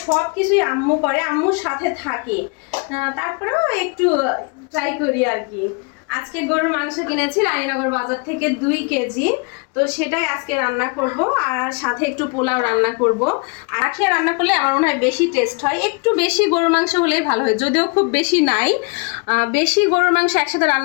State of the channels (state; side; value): quieter; right; 32.3 dB